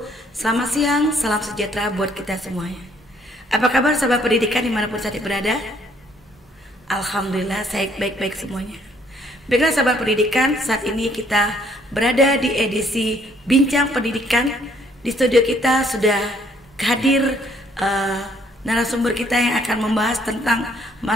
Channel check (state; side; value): normal; both; correlation 0.65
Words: Selamat siang, salam sejahtera buat kita semuanya. Apa kabar sahabat pendidikan dimanapun saat berada? Alhamdulillah saya baik-baik semuanya. Baiklah sahabat pendidikan, saat ini kita berada di edisi Bincang Pendidikan. Di studio kita sudah hadir narasumber kita yang akan membahas tentang